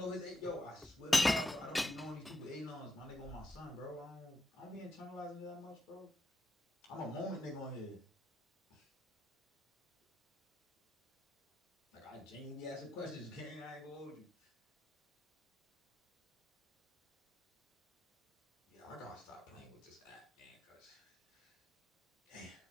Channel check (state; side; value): normal; both; correlation 0.84